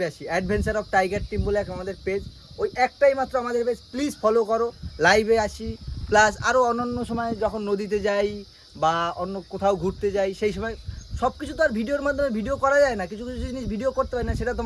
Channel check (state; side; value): identical; both; correlation 1.00